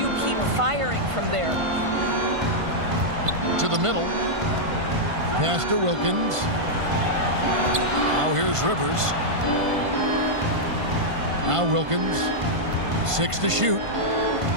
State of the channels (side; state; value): left; late; 1.5 ms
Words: keep firing from there? To the middle. Pass to Wilkins. Now here's Rivers. Now Wilkins. 6 to shoot.